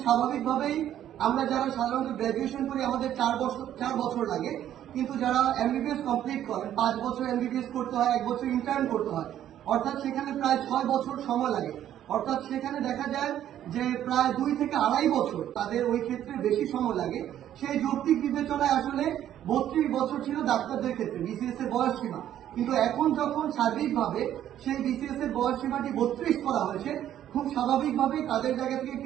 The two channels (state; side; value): quieter; left; 11.3 dB